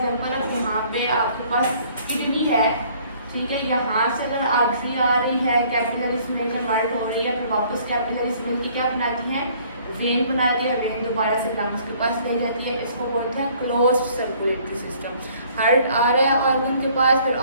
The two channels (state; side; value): inverted; both; correlation -0.58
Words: अब यहाँ पे आपके पास किडनी है, ठीक है, यहाँ से अगर आर्टरी आ रही है, कैपिलरीज में कन्वर्ट हो रही है, फिर वापस कैपिलरीज में क्या बनाती है? वेन बनाती है। वेन दोबारा से लंग्स के पास ले जाती है। इसको बोलते हैं क्लोज्ड सर्कुलेटरी सिस्टम। हार्ट आ रहा है ऑर्गन के पास, फिर